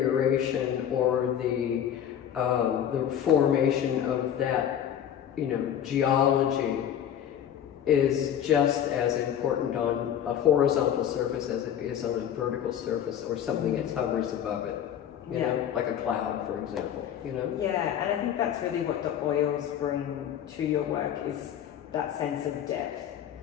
or the formation of that, geology is just as important on a horizontal surface as it is on a vertical surface or something that hovers above it. You know, like a cloud, for example, Yeah, and I think that's really what the oils bring to your work, is that sense of depth.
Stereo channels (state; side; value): quieter; right; 9.7 dB